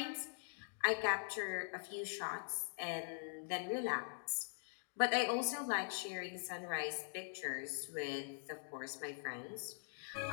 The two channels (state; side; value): silent; right; digital silence